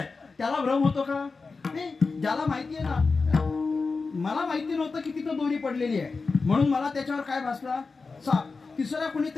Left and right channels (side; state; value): right; quieter; 4.3 dB